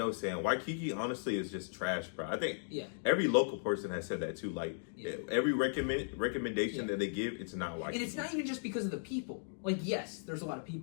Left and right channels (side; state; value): right; silent; digital silence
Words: sand. Waikiki, honestly, is just trash, bro. I think every local person has said that too. Like every recommendation that they give, it's not Waikiki. And it's not even just because of the people. Like, yes, there's a lot of